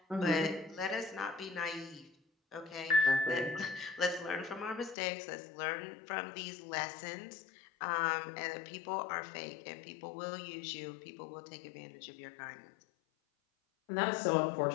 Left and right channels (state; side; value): drops out; right; at 5.0 s